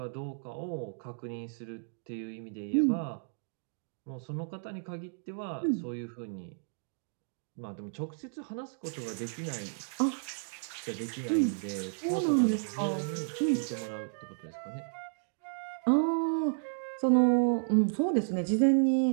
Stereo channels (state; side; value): silent; left; digital silence